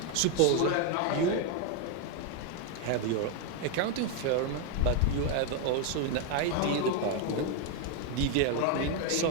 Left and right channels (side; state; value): both; different; correlation 0.01